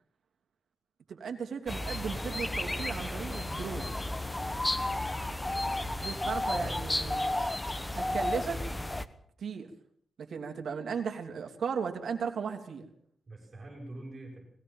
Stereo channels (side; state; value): both; normal; correlation 0.91